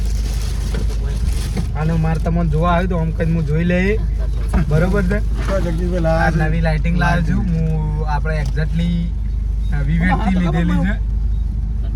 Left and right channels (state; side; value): identical; both; correlation 1.00